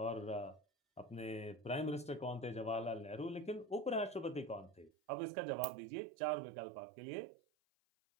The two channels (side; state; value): left; drops out; at 4.9 s